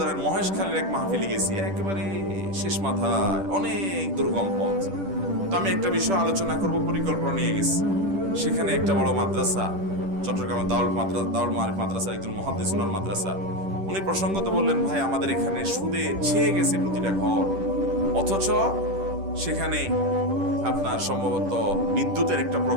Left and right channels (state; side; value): late; left; 10 ms